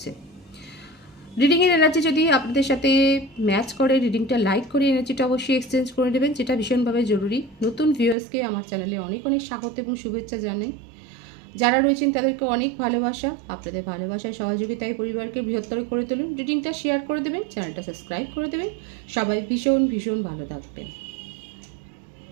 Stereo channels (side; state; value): left; drops out; at 8.2 s